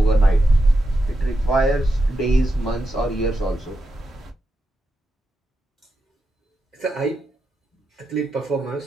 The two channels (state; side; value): normal; both; correlation 0.87